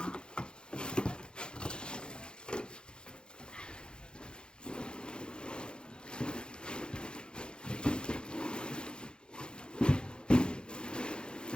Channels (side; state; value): right; late; 0.049 ms